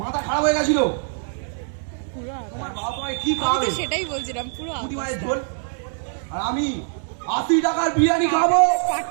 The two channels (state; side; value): silent; left; 63 dB below the other